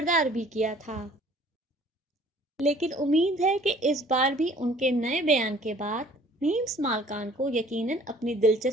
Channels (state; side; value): normal; both; correlation 0.54